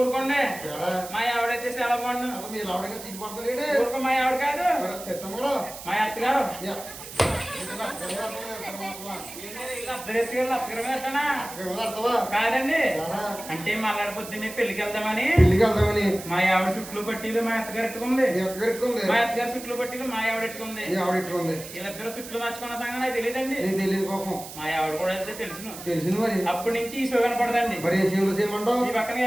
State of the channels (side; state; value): right; noise; hiss, 13 dB below the sound